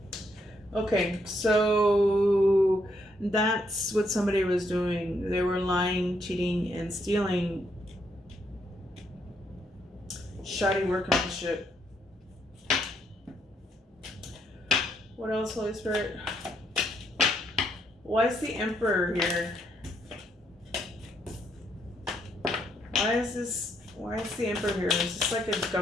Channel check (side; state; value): both; normal; correlation 0.74